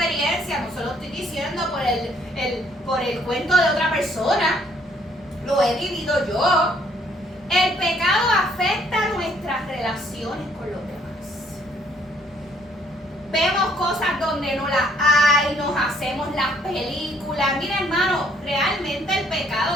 no se lo estoy diciendo por el cuento de otra persona. Lo he vivido yo. El pecado afecta nuestras relaciones con los demás. Vemos cosas donde no las hay, nos hacemos las películas. Mira, hermano, realmente el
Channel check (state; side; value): normal; both; correlation 0.64